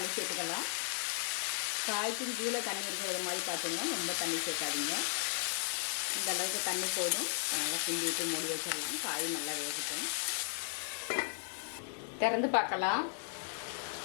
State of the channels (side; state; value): right; silent; digital silence